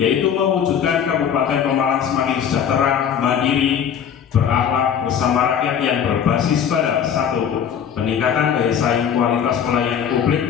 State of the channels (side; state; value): right; quieter; 8.2 dB